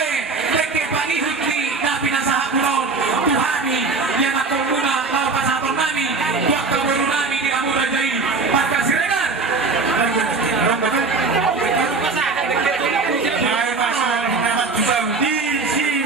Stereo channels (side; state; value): left; quieter; 4.2 dB